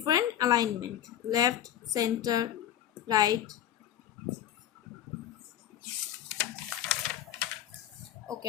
alignment: left, center, right.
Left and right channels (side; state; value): right; quieter; 11.0 dB